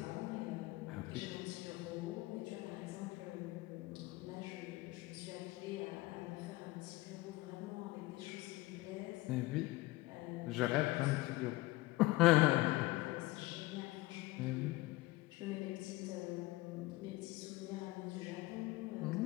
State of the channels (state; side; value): quieter; right; 20.0 dB